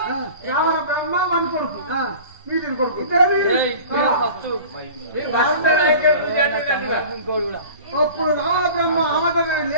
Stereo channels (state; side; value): inverted; both; correlation -0.41